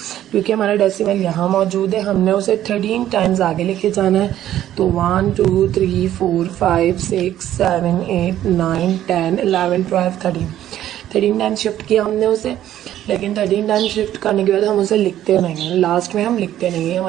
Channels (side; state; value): left; quieter; 12.3 dB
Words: क्योंकि हमारा डेसिमल यहाँ मौजूद है, हमने उसे 13 टाइम्स आगे लेके जाना है। तो 1 2 3 4 5 6 7 8 9 10 11 12 13 टाइम्स शिफ्ट किया हमने उसे। लेकिन 13 टाइम्स शिफ्ट करने के बाद हम उसे लिखते नहीं हैं, लास्ट में हम लिखते नहीं हैं,